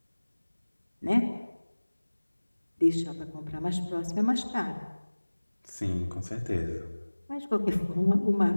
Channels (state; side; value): inverted; both; correlation -1.00